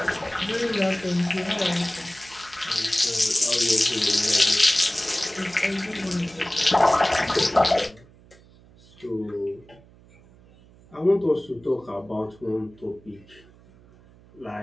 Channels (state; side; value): noise; right; hum, 26 dB below the sound